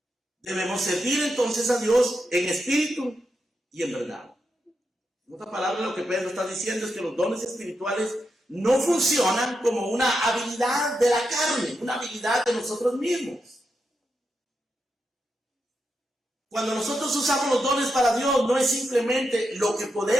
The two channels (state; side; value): normal; both; correlation 0.86